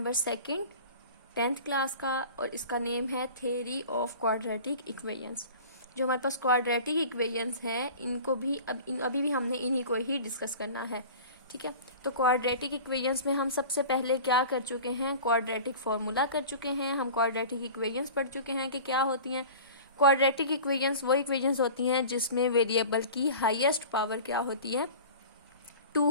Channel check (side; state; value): both; inverted; correlation -0.39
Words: 2 10th क्लास का, और इसका नेम है थ्योरी ऑफ क्वाड्रेटिक इक्वेशंस। जो हमारे पास क्वाड्रेटिक इक्वेशंस हैं इनको भी अभी भी हमने इन्हीं को ही डिस्कस करना है। ठीक है, तो क्वाड्रेटिक इक्वेशंस में हम सबसे पहले क्या कर चुके हैं, क्वाड्रेटिक फॉर्मूला कर चुके हैं। हम क्वाड्रेटिक इक्वेशंस पढ़ चुके हैं कि क्या होती हैं। क्वाड्रेटिक इक्वेशंस वो इक्वेशंस होती हैं जिसमें वेरिएबल की हाईएस्ट पावर क्या होती है,